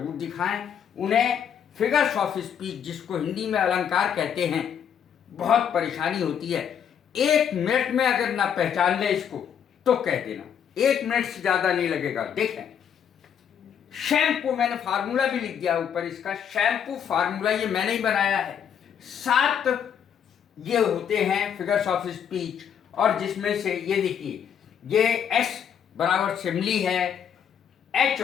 दिखाएं। उन्हें फिगर्स ऑफ स्पीच, जिसको हिंदी में अलंकार कहते हैं, बहुत परेशानी होती है। 1 मिनट में अगर ना पहचान ले इसको तो कह देना, 1 मिनट से ज़्यादा नहीं लगेगा। देखें, शैम्पू, मैंने फार्मूला भी लिख दिया ऊपर इसका। शैम्पू फार्मूला ये मैंने ही बनाया है। 7 ये होते हैं फिगर्स ऑफ स्पीच, और जिसमें से ये देखिए, ये S बराबर सिमली है, H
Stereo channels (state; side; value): quieter; right; 8.3 dB